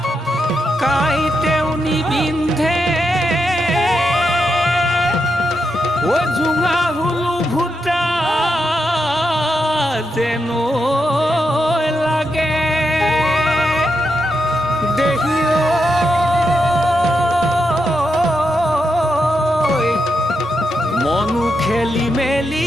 কাইতেও নিবিন্ধে ও জুঙা হুলু ভুটা যেন লাগে দেহিও মনু খেলি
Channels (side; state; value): both; normal; correlation 0.84